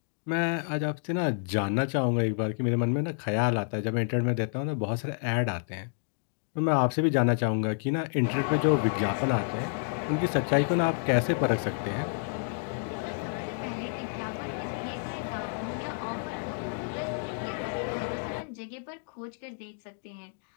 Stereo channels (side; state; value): right; silent; digital silence